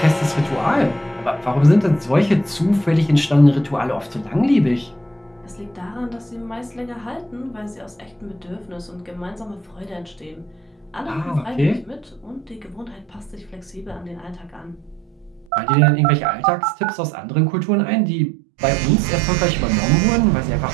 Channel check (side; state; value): left; drops out; at 15.5 s